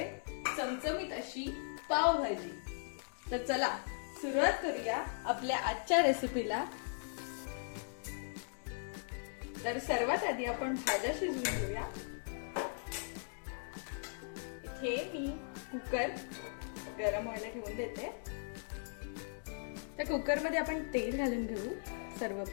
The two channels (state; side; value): silent; right; digital silence